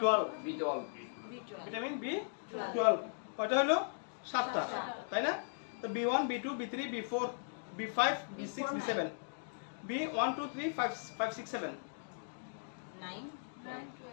ভিটামিন B12 কয়টা হলো? 7টা, তাই না? তো B1 B2 B3 B4 B5 B6 B7 B1 2 3 5 6 7 9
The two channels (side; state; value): right; silent; digital silence